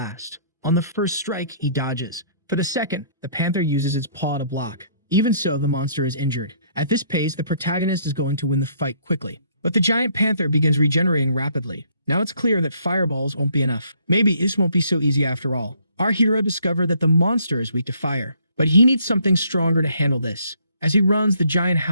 On the first strike, he dodges. For the second, the panther uses its paw to block. Even so, the monster is injured. At this pace, the protagonist is going to win the fight quickly. But the giant panther begins regenerating rapidly. Now it's clear that fireballs won't be enough. Maybe this won't be so easy after all. Our hero discovers that the monster is weak to fire, but he needs something stronger to handle this. As he runs, the giant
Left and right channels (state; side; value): inverted; both; correlation -0.64